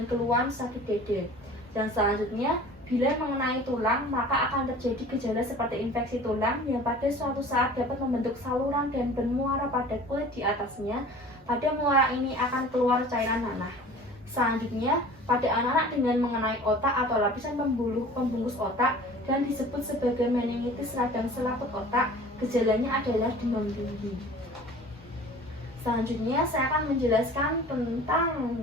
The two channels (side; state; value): both; normal; correlation 0.43